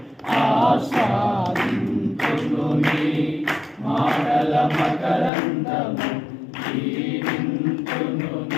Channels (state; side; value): drops out; right; at 5.3 s